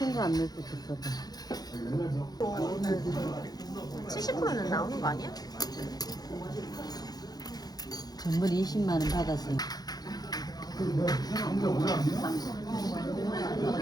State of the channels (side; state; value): right; late; 0.19 ms